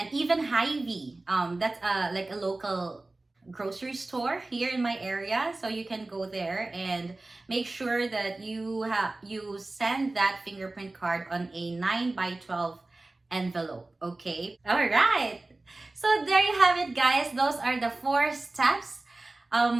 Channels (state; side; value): quieter; left; 3.0 dB